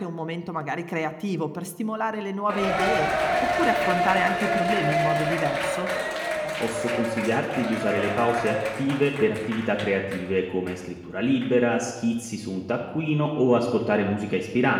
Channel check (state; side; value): identical; both; correlation 1.00